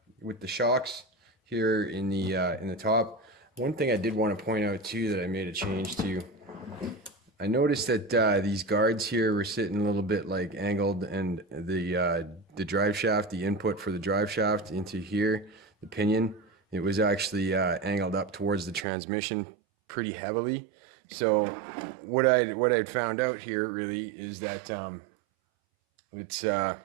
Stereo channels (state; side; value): drops out; left; at 18.9 s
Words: shocks here in the top. One thing I did want to point out too that I made a change to. I noticed that these guards here were sitting a little bit like angled, and the drive shaft, the input for the drive shaft into here, the pinion, it was actually angled up towards the transmission pretty heavily. So what I'd found out here really is that it's the